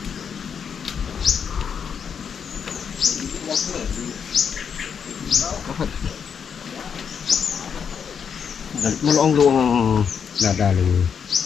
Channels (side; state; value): right; quieter; 7.0 dB